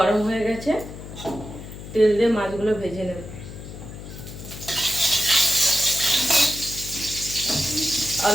হয়ে গেছে, তেল দিয়ে মাছগুলো ভেজে নেব।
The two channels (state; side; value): noise; left; hum, 12 dB below the sound